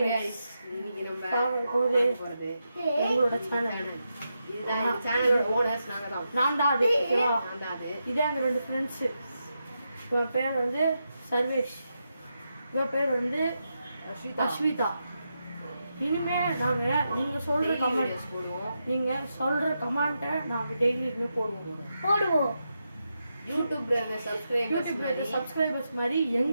guys இன்னைக்கு நம்ம பார்க்க போறது எங்களோட சேனல். இதுதான் இந்த சேனலோட ஓனர்ஸ் நான் தான் அது. இதே எங்க ரெண்டு ஃப்ரெண்ட்ஸ். இவன் பேர் வந்து சர்வேஷ், இவன் பேர் வந்து அஸ்விதா. இனிமே நாங்க நீங்க சொல்ற கமெண்ட்ஸ் போடுவோம். நீங்க சொல்ற கமெண்ட்டை நாங்க டெய்லி போடுவோம். யூடியூப்ல சப்ஸ்கிரைபர்ஸ் மாதிரி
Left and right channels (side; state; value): both; inverted; correlation -0.86